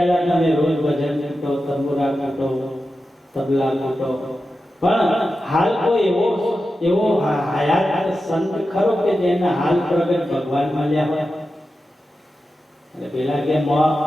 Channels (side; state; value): both; normal; correlation 0.91